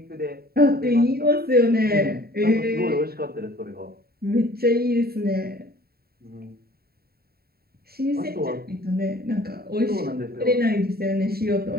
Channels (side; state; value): left; late; 0.45 ms